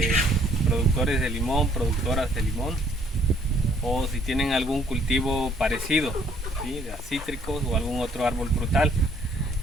productores de limón, productoras de limón, o si tienen algún cultivo parecido, ¿sí? De cítricos o algún otro árbol frutal.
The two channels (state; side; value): normal; both; correlation 0.63